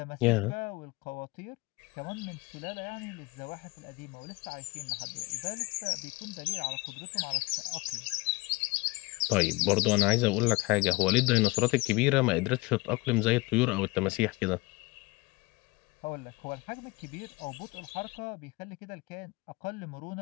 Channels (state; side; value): quieter; right; 23.9 dB